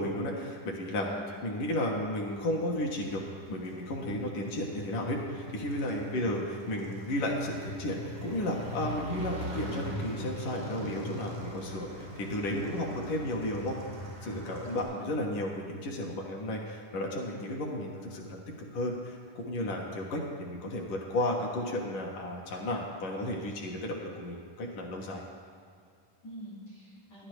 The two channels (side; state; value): right; late; 10 ms